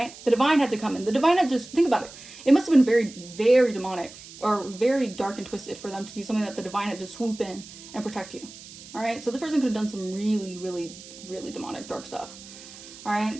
The divine had to come in. The divine had just, think about it. It must have been very, very demonic or very dark and twisted for them to do something that the divine had to swoop in and protect you. All right, so this person could have done some really, really, really demonic, dark stuff. All right,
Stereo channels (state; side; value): noise; right; hiss, 17 dB below the sound